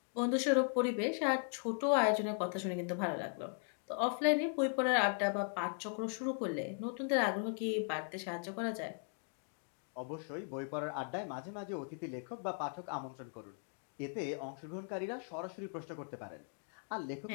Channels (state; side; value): silent; right; 52 dB below the other